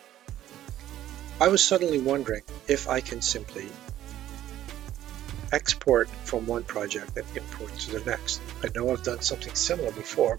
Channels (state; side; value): quieter; left; 12.7 dB